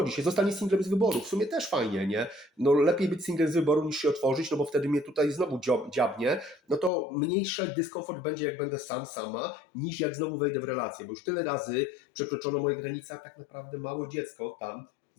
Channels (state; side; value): drops out; right; at 6.9 s